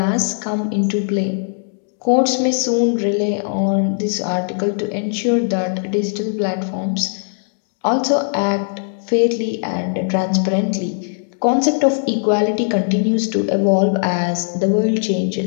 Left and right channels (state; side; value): silent; right; digital silence